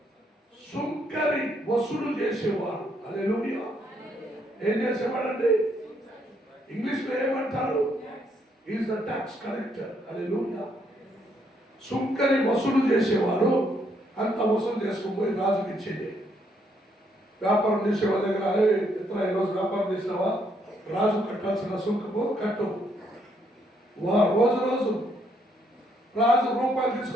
సుంకరి వసూలు చేసేవాడు. హల్లెలూయా. ఏం చేసేవాడండి? ఇంగ్లీష్ లో ఏమంటారు? Is the tax collector. హల్లెలూయా. సుంకరి వసూలు చేసేవాడు. అంత వసూలు చేసుకుపోయి రాజుకి ఇచ్చేది. వ్యాపారం చేసేవాళ్ళ దగ్గర, ఇతర ఈరోజు వ్యాపారం చేసినావా, రాజు కట్టాల్సిన సుంకము కట్టు. రోజు రాజు రూపాయలు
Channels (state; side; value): normal; both; correlation 0.72